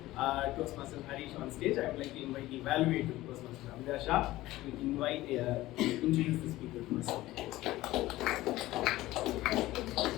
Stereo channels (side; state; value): right; quieter; 17.0 dB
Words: Toastmaster Harish on stage, I would like to invite the evaluator, Toastmaster Amir Shah, to introduce the speaker to us.